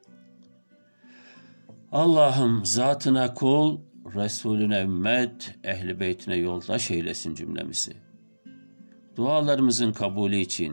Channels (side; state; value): both; inverted; correlation -1.00